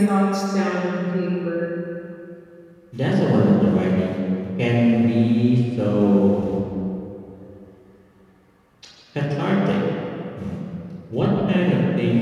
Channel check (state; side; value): identical; both; correlation 1.00